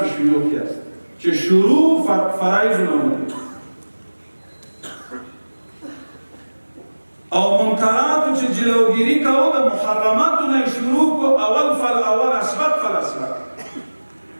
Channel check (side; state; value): both; inverted; correlation -1.00